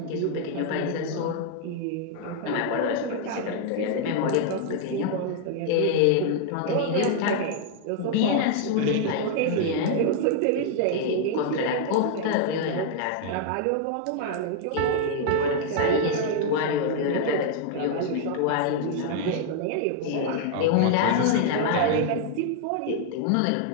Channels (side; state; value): both; different; correlation 0.00